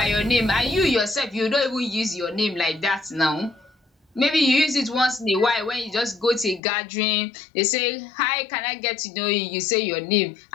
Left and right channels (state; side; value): drops out; right; at 6.6 s